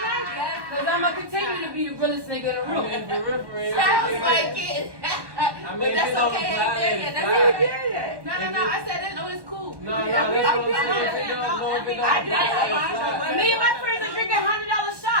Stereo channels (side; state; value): left; late; 1.1 ms